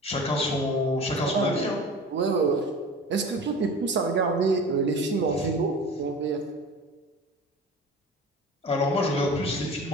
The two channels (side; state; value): both; normal; correlation 0.37